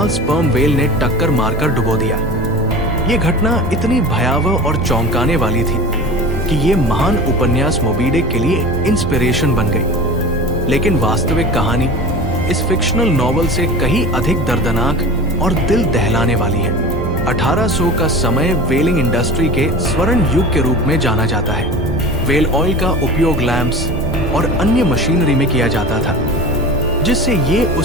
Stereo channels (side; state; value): both; normal; correlation 0.35